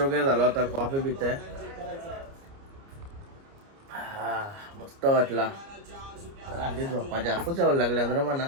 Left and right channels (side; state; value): left; late; 29 ms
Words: झाला होता, कॉफी पिते. मस्त वाटला. आधी झोपा जास्त जेवायला लागल्या ना म्हणा,